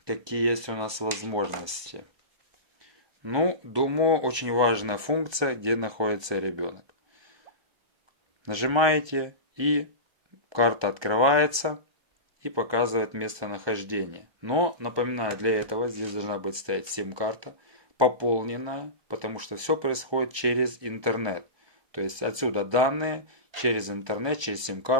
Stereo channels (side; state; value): left; late; 1.2 ms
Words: какие есть у нас возможности? Ну, думаю, очень важная функция, где находится ребенок. Нажимаете, и карта открывается и показывает местонахождение. Но, напоминаю, для этого здесь должна быть стоять сим-карта, пополненная, потому что все происходит через интернет. То есть отсюда данные через интернет, через